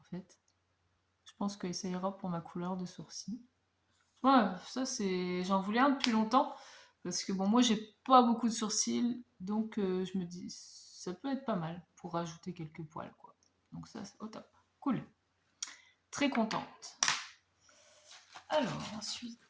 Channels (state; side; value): identical; both; correlation 1.00